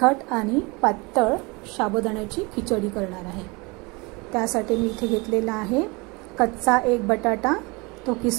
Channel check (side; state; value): left; quieter; 26.6 dB